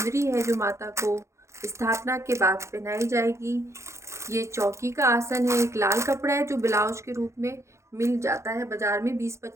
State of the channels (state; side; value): late; left; 0.14 ms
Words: है जो माता को स्थापना के बाद पहनाई जाएगी। ये चौकी का आसन है, एक लाल कपड़ा है जो ब्लाउज के रूप में मिल जाता है बाजार में,